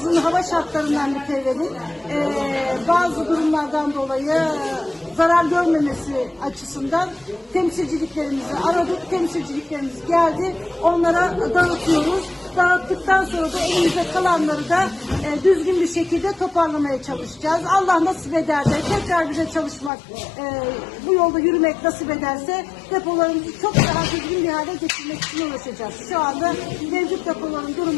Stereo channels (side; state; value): right; drops out; at 19.9 s